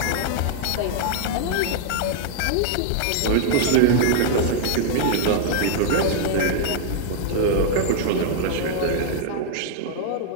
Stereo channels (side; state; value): both; different; correlation -0.01